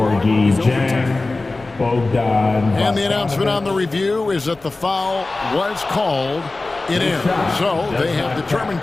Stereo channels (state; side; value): quieter; right; 3.3 dB